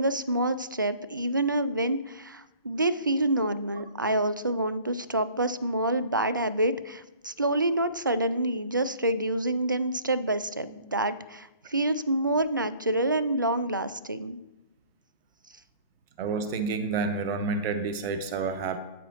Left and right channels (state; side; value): inverted; both; correlation -0.51